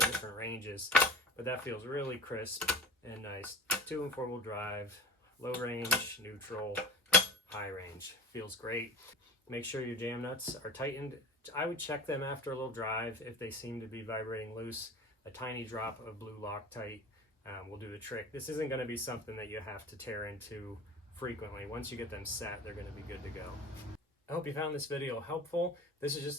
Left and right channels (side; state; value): both; normal; correlation 0.36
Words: different ranges, but that feels really crisp and nice. 2- and 4-wheel drive, low range, neutral, high range. Feels great. Make sure your jam nuts are tightened. I would check them after a little drive. If they seem to be vibrating loose, a tiny drop of blue Loctite will do the trick. This isn't going to be something that you have to tear into frequently. Once you get them set, they're going to be good to go. I hope you found this video helpful. This is just